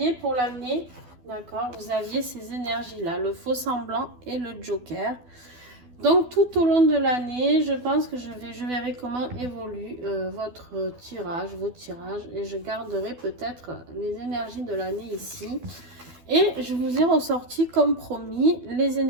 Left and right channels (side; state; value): left; late; 12 ms